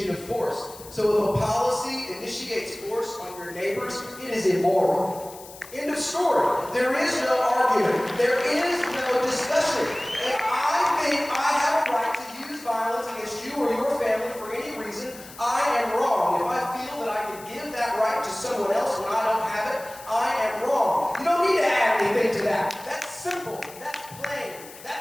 of force. So if a policy initiates force on your neighbors, it is immoral. End of story. There is no argument. There is no discussion. If I think I have a right to use violence against you or your family for any reason, I am wrong. If I feel that I can give that right to someone else when I don't have it, I am wrong. You don't need to add anything to that. That's simple. That's plain.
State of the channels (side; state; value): left; noise; hiss, 18 dB below the sound